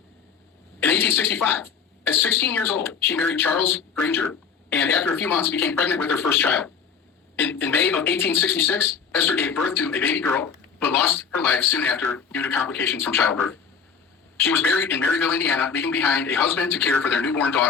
In 1865, at 16 years old, she married Charles Granger, and after a few months became pregnant with her first child. In May of 1866, Esther gave birth to a baby girl, but lost her life soon after due to complications from childbirth. She was buried in Maryville, Indiana, leaving behind a husband to care for their newborn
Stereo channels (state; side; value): quieter; right; 6.4 dB